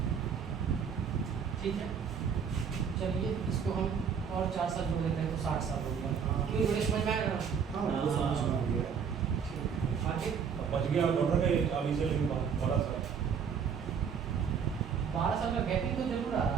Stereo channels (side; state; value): left; quieter; 6.9 dB